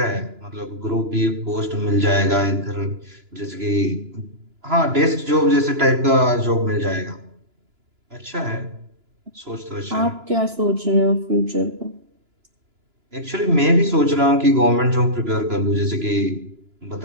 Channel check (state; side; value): late; left; 2.9 ms